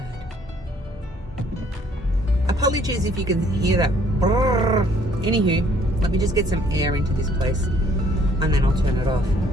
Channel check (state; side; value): normal; both; correlation 0.62